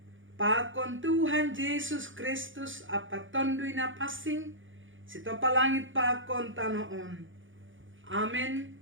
pakon Tuhan Yesus Kristus apa tondoy na pasing, sito palangit pakon tanoon. Amen.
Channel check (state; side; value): late; left; 0.57 ms